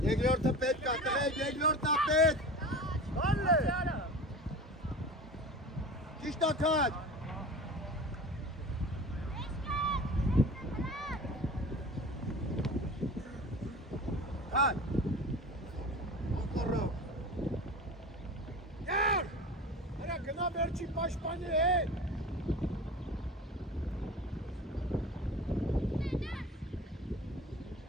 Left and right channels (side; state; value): both; normal; correlation 0.35